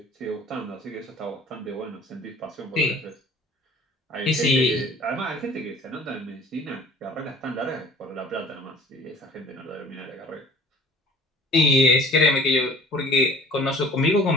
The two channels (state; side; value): normal; both; correlation 0.48